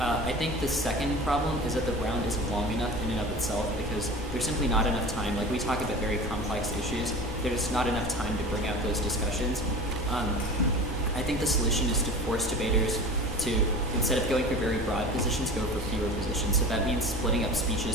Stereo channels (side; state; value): both; normal; correlation 0.36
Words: I think the second problem is that the round isn't long enough in and of itself, because there's simply not enough time. Like we talk about very complex issues, there's not enough time to bring out those discussions. I think the solution is to force debaters to, instead of going for very broad positions, go for fewer positions. So that means splitting up